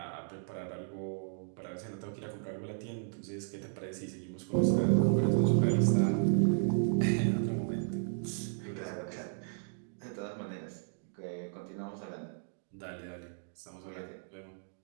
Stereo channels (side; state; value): left; silent; digital silence